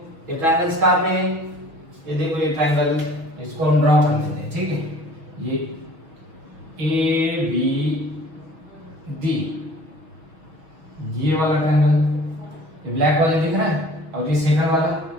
ये ट्रायंगल्स कहां पे है, ये देखो ये ट्रायंगल, इसको हम ड्रॉ कर लेते हैं। ठीक है, ये ए बी डी, ये वाला ट्रायंगल, ये ब्लैक वाला दिख रहा है, और ये सेकंड वाला,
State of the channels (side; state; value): left; late; 6.2 ms